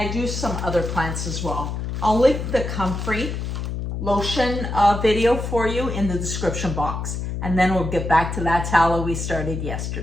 do some other plants as well. I'll link the comfrey lotion video for you in the description box. And then we'll get back to that tallow we started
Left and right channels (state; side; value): noise; left; hum, 4 dB below the sound